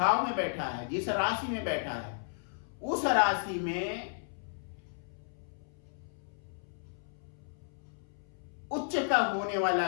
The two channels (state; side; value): silent; right; 55 dB below the other